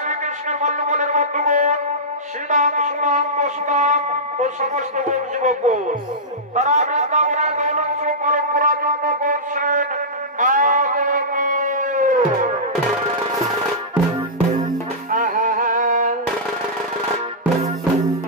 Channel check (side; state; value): both; normal; correlation -0.14